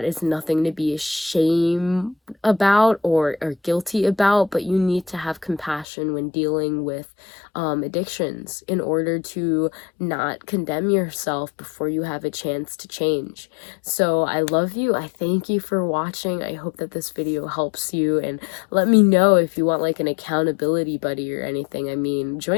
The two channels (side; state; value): right; drops out; at 5.9 s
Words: is nothing to be ashamed about or guilty about, but you need to have compassion when dealing with addictions in order to not condemn yourself before you have a chance to change. So I love you. I thank you for watching. I hope that this video helps you, and let me know if you want like an accountability buddy or anything. I mean,